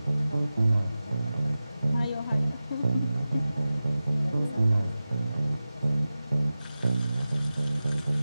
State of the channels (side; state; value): both; inverted; correlation -0.95